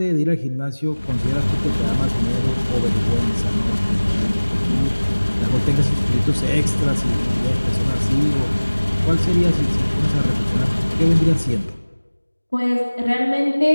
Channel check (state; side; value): inverted; both; correlation -1.00